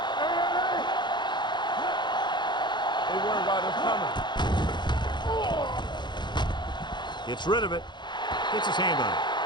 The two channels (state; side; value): late; right; 0.22 ms